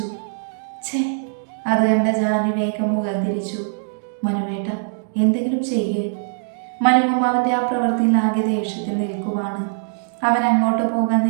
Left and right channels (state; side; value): silent; left; digital silence